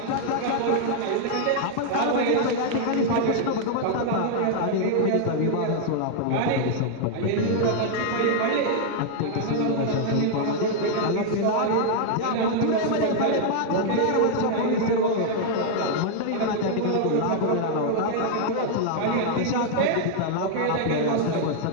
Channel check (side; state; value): both; different; correlation -0.01